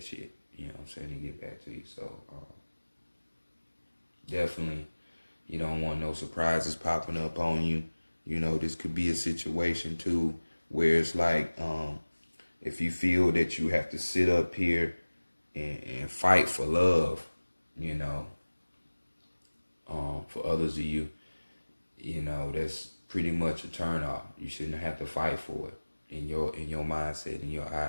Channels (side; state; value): both; inverted; correlation -1.00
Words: shit. You know what I'm saying? To get back to you. So definitely, you don't want no surprises popping up on you. This could be a situation too where it's like, if you feel that you have to sit up here and fight for love, for others of you, that's pretty much a turn off. You shouldn't have to fight for it in your mindset, in your